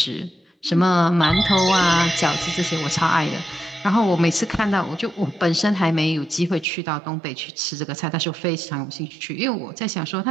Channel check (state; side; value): drops out; left; at 6.7 s